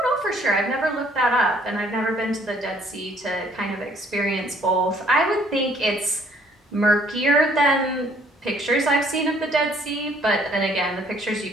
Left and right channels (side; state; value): both; normal; correlation 0.61